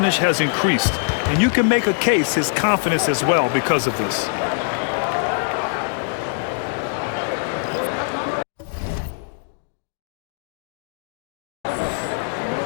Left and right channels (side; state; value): right; silent; digital silence